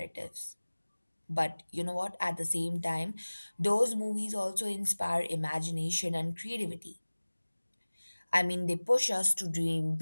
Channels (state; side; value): inverted; both; correlation -1.00